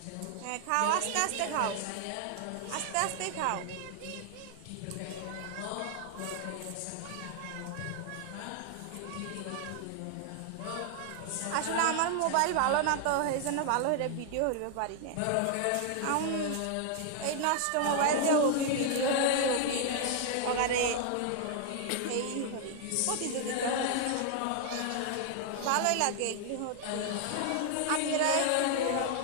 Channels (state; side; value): different; both; correlation 0.00